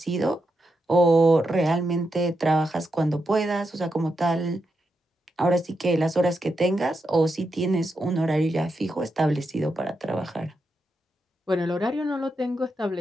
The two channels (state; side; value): normal; both; correlation 0.85